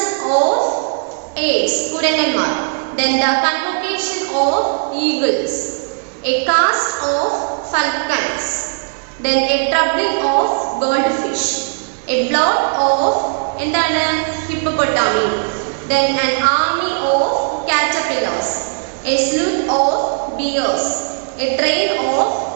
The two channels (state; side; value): silent; left; digital silence